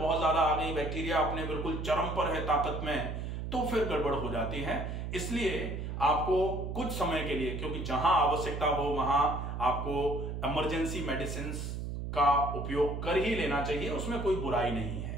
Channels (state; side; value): noise; right; hum, 5 dB below the sound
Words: ज्यादा आ गई, बैक्टीरिया अपने बिल्कुल चरम पर है ताकत में, तो फिर गड़बड़ हो जाती है। इसलिए आपको कुछ समय के लिए, क्योंकि जहां आवश्यकता हो वहां आपको इमरजेंसी मेडिसिन का उपयोग कर ही लेना चाहिए, उसमें कोई बुराई नहीं